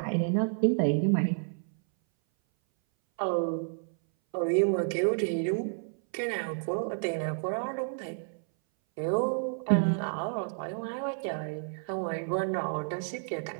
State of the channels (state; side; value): silent; left; 58 dB below the other